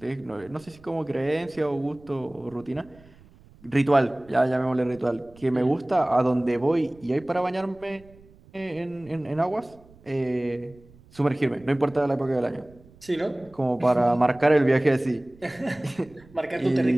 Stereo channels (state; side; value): noise; right; rumble, 25 dB below the sound